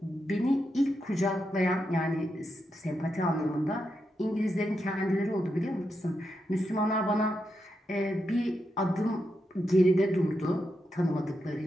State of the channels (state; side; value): normal; both; correlation 0.85